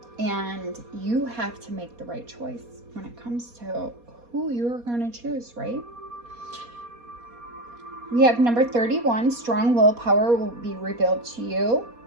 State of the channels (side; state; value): left; late; 4.2 ms